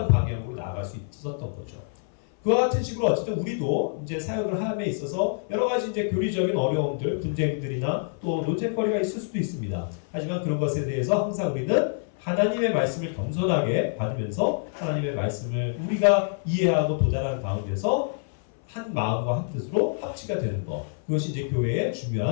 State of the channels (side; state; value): right; silent; 57 dB below the other